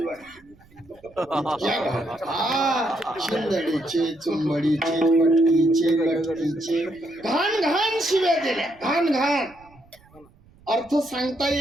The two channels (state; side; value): noise; right; rumble, 28 dB below the sound